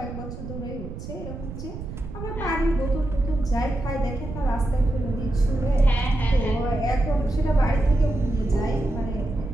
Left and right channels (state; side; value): noise; right; rumble, 9 dB below the sound